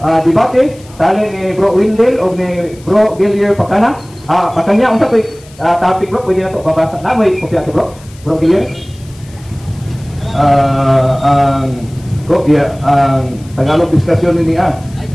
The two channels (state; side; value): noise; left; hiss, 25 dB below the sound